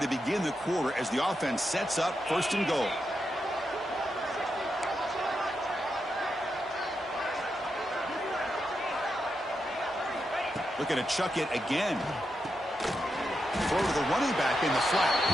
begin the quarter as the offense sets up first and goal. Looking to chuck it again. Throw to the running back in the flat.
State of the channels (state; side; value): normal; both; correlation 0.86